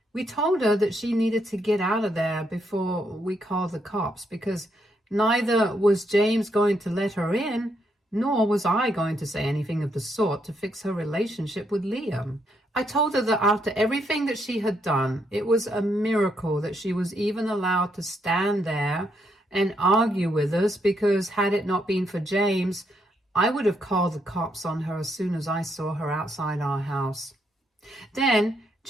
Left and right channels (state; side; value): normal; both; correlation 0.76